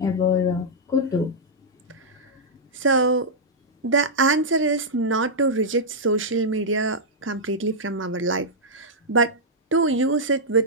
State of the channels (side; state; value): both; normal; correlation -0.08